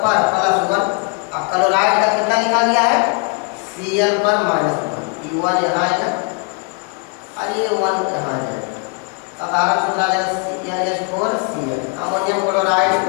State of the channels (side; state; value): right; quieter; 32.8 dB